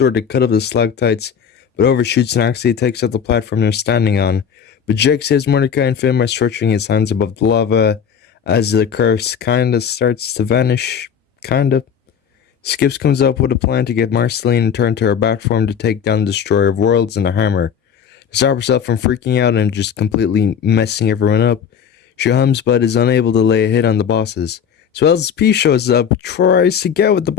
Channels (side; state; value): right; quieter; 7.6 dB